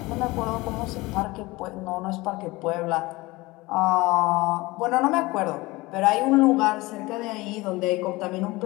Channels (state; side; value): quieter; right; 21.4 dB